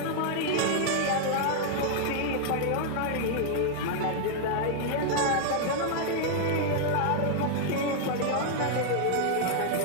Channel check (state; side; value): different; both; correlation -0.01